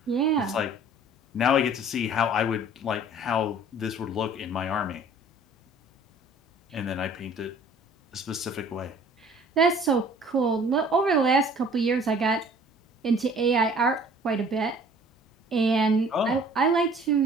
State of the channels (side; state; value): both; normal; correlation 0.51